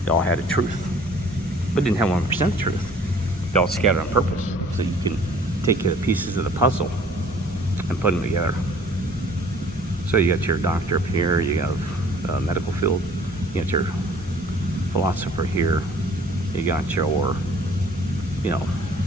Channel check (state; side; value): normal; both; correlation 0.53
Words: They all had a truth, but didn't have 1% truth. They all scattered on purpose, so you can take the pieces of the puzzle and put them together. So you got your doctor up here, you have medical field, you got your philosopher here, you got your, your